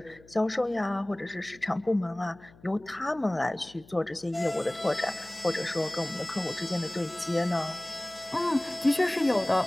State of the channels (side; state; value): left; noise; hum, 25 dB below the sound